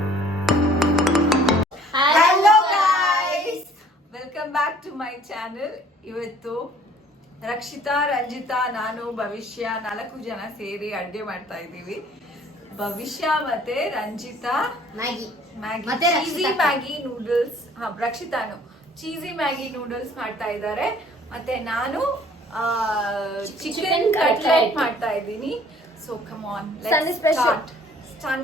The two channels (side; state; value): both; normal; correlation 0.56